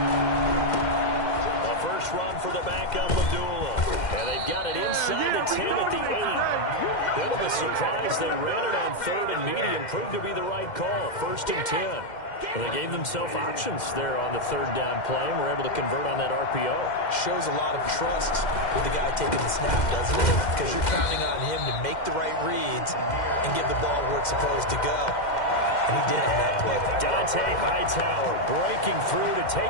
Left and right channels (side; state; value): right; late; 2.1 ms